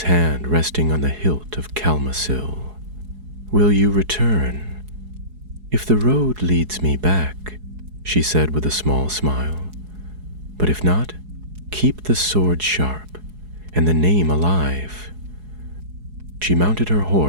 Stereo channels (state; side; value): late; left; 4.7 ms